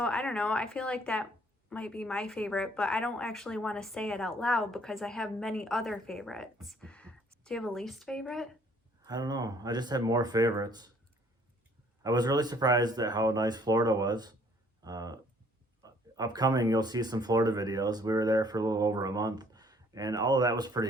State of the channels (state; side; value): normal; both; correlation 0.61